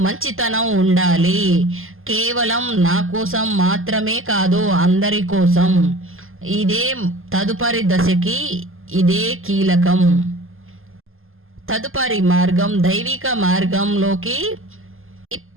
మంచితనం ఉండాలి. కేవలం నా కోసం మాత్రమే కాదు, అందరి కోసం. ఇదే తదుపరి దశకి ఇదే కీలకం. తదుపరి మార్గం దైవిక మార్గంలోకి.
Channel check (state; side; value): late; left; 0.60 ms